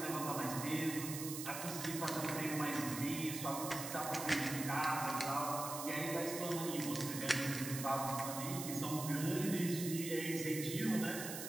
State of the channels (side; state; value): right; noise; hiss, 6 dB below the sound